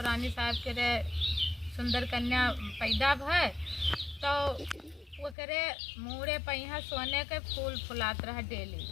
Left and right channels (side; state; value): right; drops out; at 5.4 s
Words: साहब के सुंदर कन्या पैदा भय। तो वो करे मुड़े पहिया सोने के फूल फुलात रहा डेली।